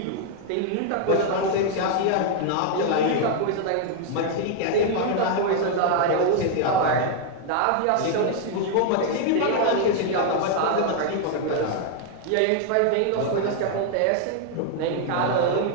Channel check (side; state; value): both; different; correlation 0.00